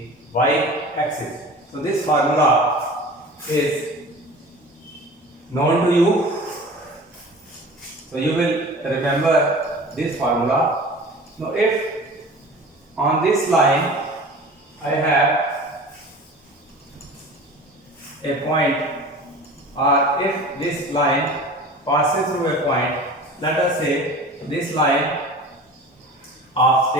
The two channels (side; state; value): both; normal; correlation 0.39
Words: y axis. So this formula is known to you, so you will remember this formula. Now if on this line I have a point, or if this line passes through a point, let us say this line of